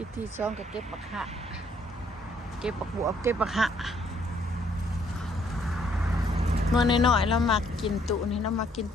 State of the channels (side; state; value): both; normal; correlation 0.67